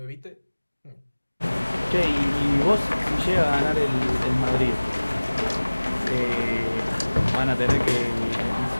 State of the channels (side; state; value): both; inverted; correlation -1.00